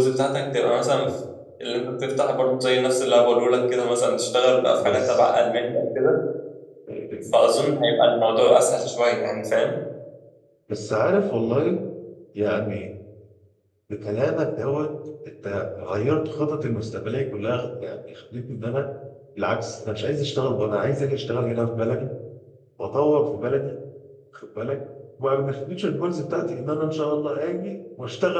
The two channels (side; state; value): both; identical; correlation 1.00